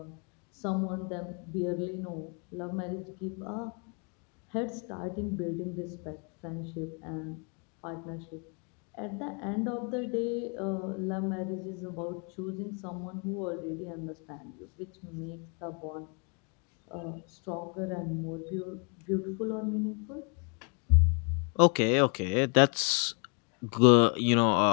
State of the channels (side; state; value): right; quieter; 37.3 dB